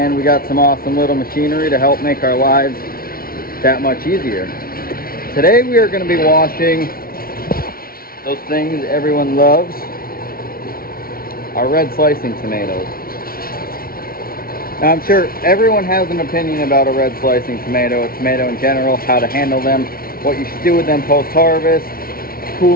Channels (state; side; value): late; right; 0.43 ms